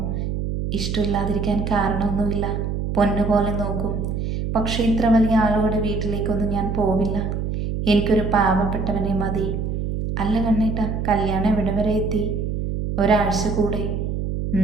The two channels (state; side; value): noise; right; hum, 2 dB below the sound